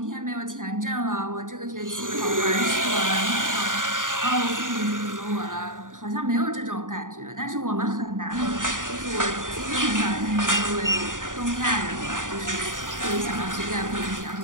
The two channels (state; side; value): late; left; 0.88 ms